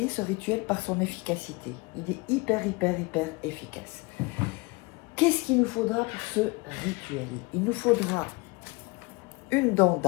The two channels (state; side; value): quieter; right; 25.6 dB